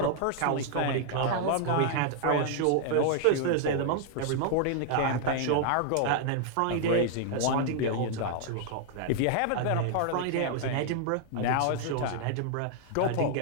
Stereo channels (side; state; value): both; different; correlation 0.00